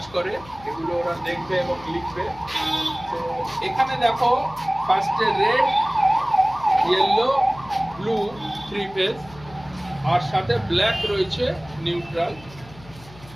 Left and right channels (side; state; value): left; noise; hum, 21 dB below the sound